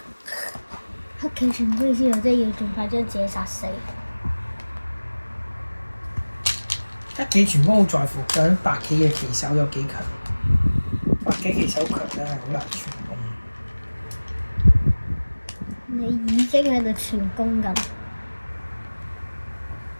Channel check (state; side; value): inverted; both; correlation -1.00